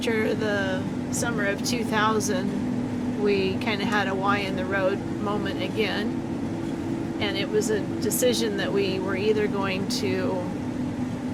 the summer of 2000 we kind of had a Y in the road moment again, and it was a decision that we were either going to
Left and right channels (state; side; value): identical; both; correlation 1.00